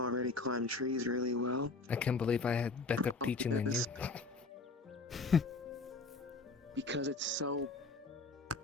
climb trees really well. I can't believe I had better teaching than you. Yes. Because it's so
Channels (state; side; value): quieter; right; 3.8 dB